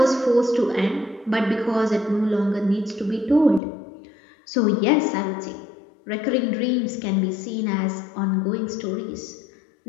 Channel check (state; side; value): drops out; right; at 3.6 s